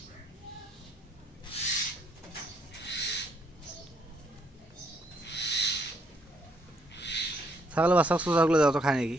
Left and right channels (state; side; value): normal; both; correlation 0.71